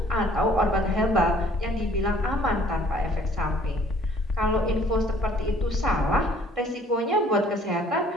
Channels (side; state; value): both; normal; correlation 0.57